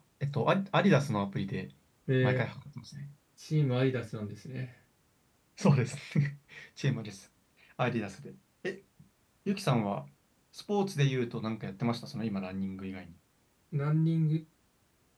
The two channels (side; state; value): both; identical; correlation 1.00